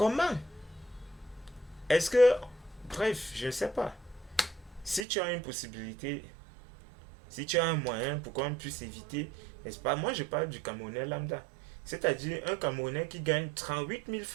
Est-ce que, bref, je ne sais pas. Si tu as une possibilité, si tu as un moyen pour qu'on puisse éviter, n'est-ce pas? Moi, je parle du Camerounais lambda. C'est-à-dire un Camerounais qui gagne 38 000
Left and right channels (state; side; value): drops out; left; at 5.1 s